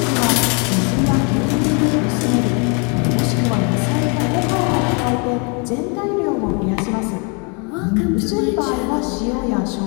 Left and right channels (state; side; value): quieter; right; 34.8 dB